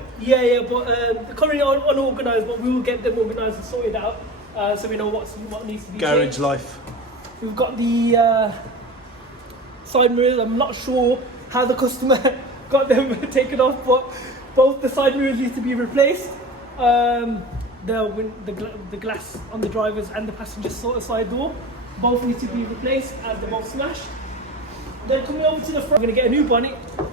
Yeah, but they're currently unorganised, but we will get them organised and sorted out, so we know what needs to be Garage changed. life. We've got the side mirrors. I'm not sure how the customer got them taken off, but both the side mirrors need to be replaced. The glass on the driver's and the passenger side door both need to be replaced as they're both smashed. Then coming over to the front, we're going to get a new bonnet,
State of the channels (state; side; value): normal; both; correlation 0.32